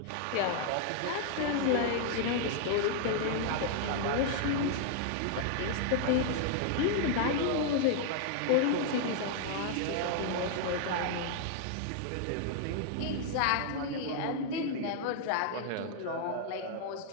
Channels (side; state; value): both; different; correlation 0.00